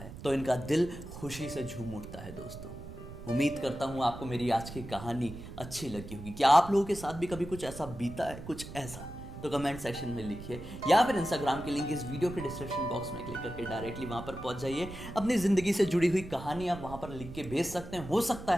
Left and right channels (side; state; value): right; noise; rumble, 12 dB below the sound